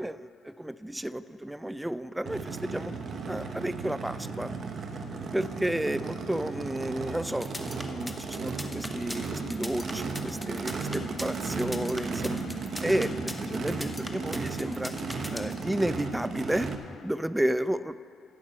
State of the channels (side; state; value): both; normal; correlation 0.91